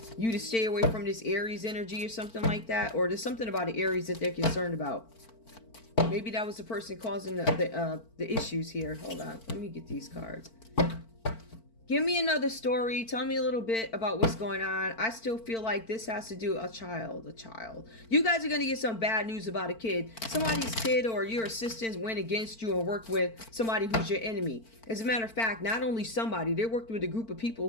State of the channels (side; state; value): right; late; 4.5 ms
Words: you to stay away from this Aries energy or something like that. Or there's something about the Aries that they're concerned about. Maybe that was the person causing the issues here. Hold on. Let me get these cards. Give me another story. Tell me a little bit about what's going on. I still feel like this has to do a child. You guys are going to get some bad news about a kid. Somebody's kid or your assistants went against you and worked with somebody who's your enemy. As a matter of fact, not only somebody, they worked with a group of people